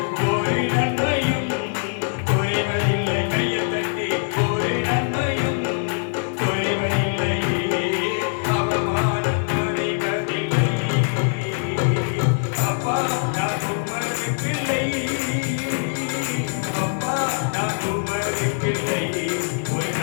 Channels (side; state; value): right; silent; digital silence